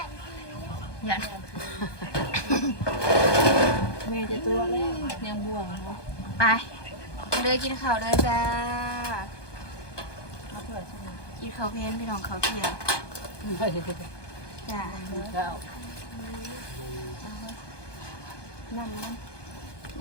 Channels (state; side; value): late; right; 1.2 ms